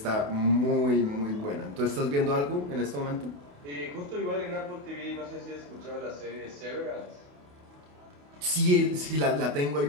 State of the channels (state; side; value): late; left; 28 ms